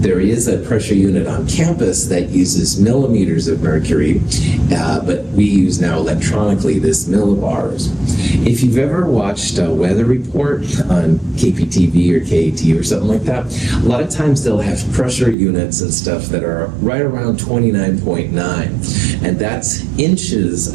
is a pressure unit on campus that uses millimeters of mercury, but we use now electronically this millibars. If you've ever watched a weather report on KPTV or KAT or something like that, a lot of times they'll have pressure units and stuff that are right around 29.9, and that's inches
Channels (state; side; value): drops out; left; at 15.4 s